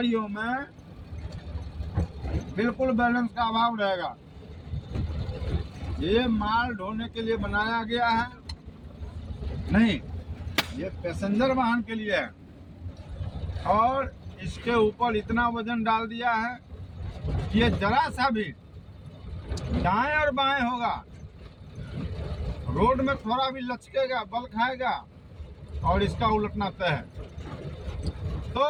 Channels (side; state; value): both; identical; correlation 1.00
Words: में बिल्कुल बैलेंस का अभाव रहेगा। ये माल ढोने के लिए बनाया गया है नहीं, ये पैसेंजर वाहन के लिए है। और इसके ऊपर इतना वजन डाल दिया है कि ये जरा सा भी दाएं और बाएं होगा, रोड में थोड़ा भी लचकेगा, बल खाएगा और इसका उलटना तय है। तो